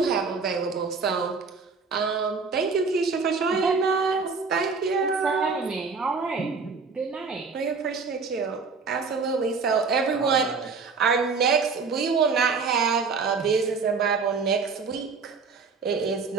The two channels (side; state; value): left; quieter; 4.8 dB